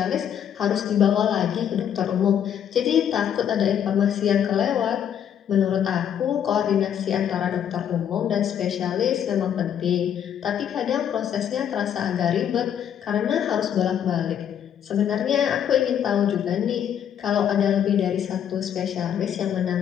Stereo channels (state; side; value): quieter; right; 9.2 dB